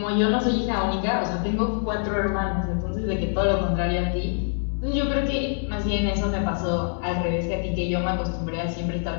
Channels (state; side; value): silent; right; 62 dB below the other